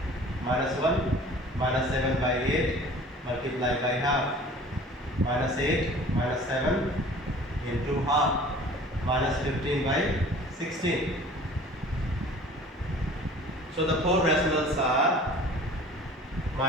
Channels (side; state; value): both; normal; correlation 0.46